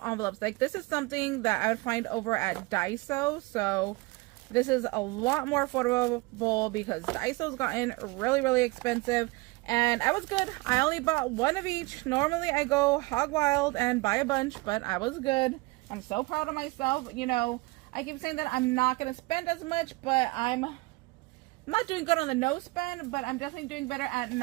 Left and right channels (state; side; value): quieter; left; 23.5 dB